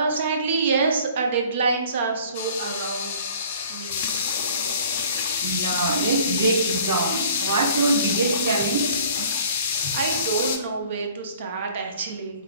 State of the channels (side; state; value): both; inverted; correlation -0.51